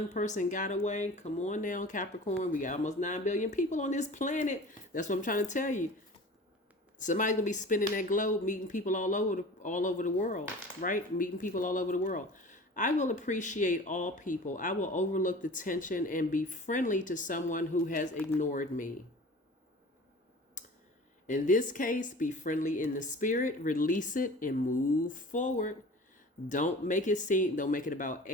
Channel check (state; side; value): normal; both; correlation 0.40